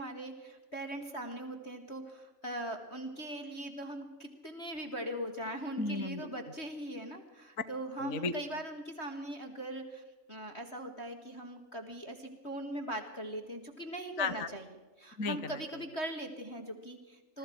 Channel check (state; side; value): late; right; 3.2 ms